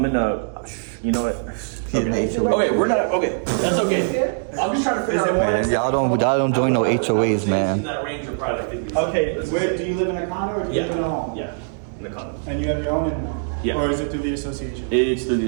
a. You know what? Okay. Okay, we're not. Okay, that's okay. I'm just trying to figure out. Man, y'all don't join no HOAs, In man. that range of probably like 50 Okay, where, do you live in a condo or do you live in a home? Yeah, in the condo. And you have your own internet? Yeah. Or is it through the association? It's through the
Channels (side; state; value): left; silent; digital silence